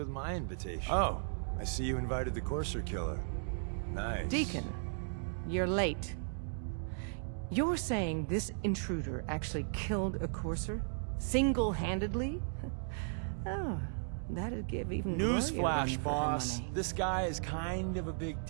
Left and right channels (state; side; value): silent; left; digital silence